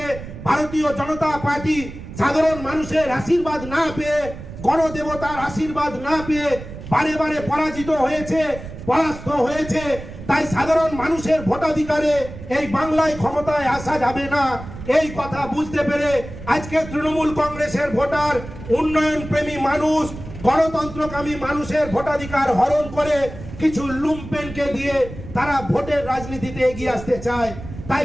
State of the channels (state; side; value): noise; right; rumble, 12 dB below the sound